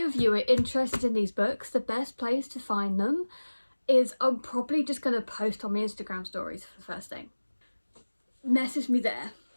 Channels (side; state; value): both; inverted; correlation -1.00